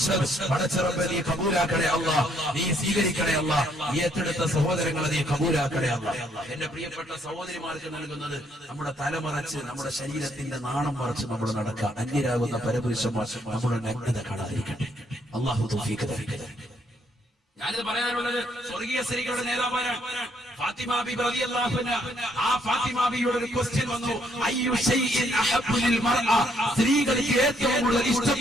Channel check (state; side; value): normal; both; correlation 0.69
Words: പടച്ചറബ്ബേ, നീ കബൂലാക്കണേ അല്ലാഹ്, നീ സ്വീകരിക്കണേ അല്ലാഹ്. ഈ ഏറ്റെടുത്ത സഹോദരങ്ങളെ നീ കബൂലാക്കണേ അല്ലാഹ്. എന്റെ പ്രിയപ്പെട്ട സഹോദരിമാർക്ക് നൽകുന്നത് നമ്മുടെ തലമറച്ച് നമ്മുടെ ശരീരത്തിന്റെ നാണം മറച്ച് നമ്മൾ നടക്കുക. അന്യരാകുന്ന പരപുരുഷന്മാർ നമ്മുടെ നഗ്നത കാണാതിരിക്കട്ടെ. അല്ലാഹു തൗഫീഖ് തരട്ടെ. ഞാനിത് പറയാനുള്ളത് സ്വർഗീയ സ്ത്രീകളുടെ നേതാവാണ് ഫാത്തിമ ബീബി റളിയല്ലാഹു അൻഹ. ആ ഫാത്തിമ ബീവിയുടെ ഒരു ക്വസ്റ്റ്യൻ വന്നു, അയ്യു ഷൈഇൻ അഹബ്ബു ലിൽ മർഅ, സ്ത്രീകൾക്ക് ഏറ്റവും കൂടുതൽ